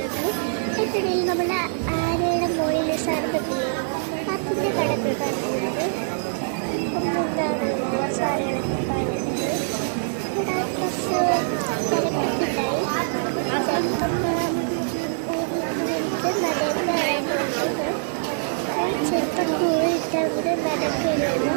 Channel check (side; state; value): left; silent; digital silence